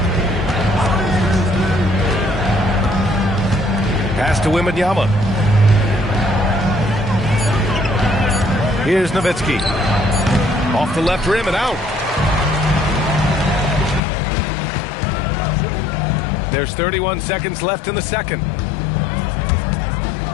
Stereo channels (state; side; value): drops out; right; at 14.0 s